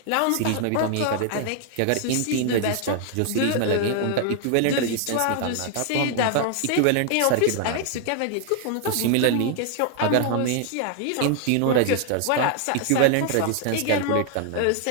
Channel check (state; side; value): different; both; correlation 0.00